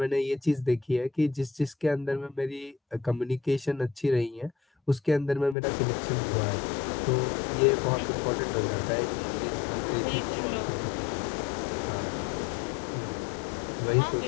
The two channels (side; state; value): right; drops out; at 5.6 s